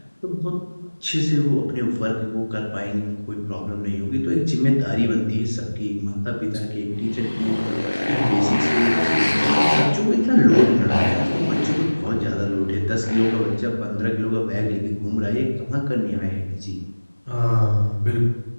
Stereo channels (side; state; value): both; inverted; correlation -1.00